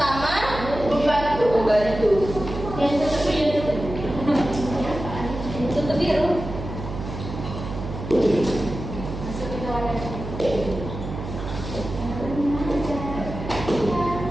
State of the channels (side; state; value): right; noise; hum, 8 dB below the sound